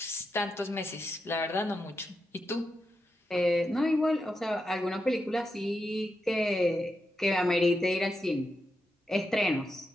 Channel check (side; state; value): both; normal; correlation 0.86